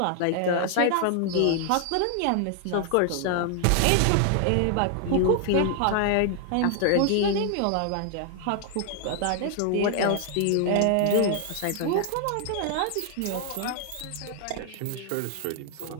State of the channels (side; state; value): both; different; correlation 0.00